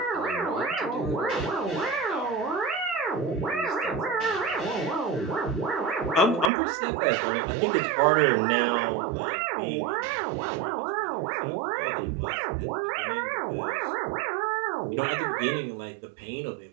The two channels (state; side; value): drops out; left; at 6.5 s